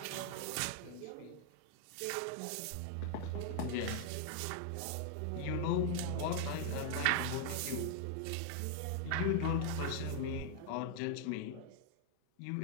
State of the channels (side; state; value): both; different; correlation 0.00